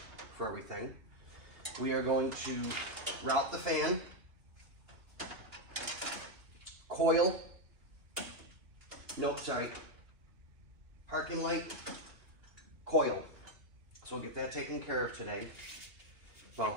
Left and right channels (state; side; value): late; left; 2.4 ms